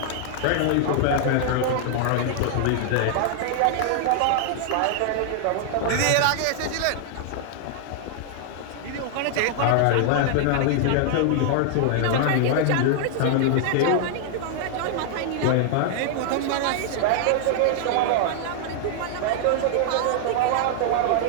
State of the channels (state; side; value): different; both; correlation -0.01